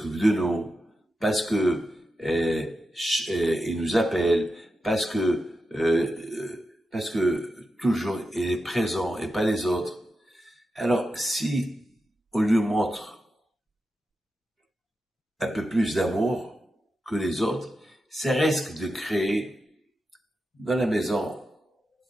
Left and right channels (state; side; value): normal; both; correlation 0.90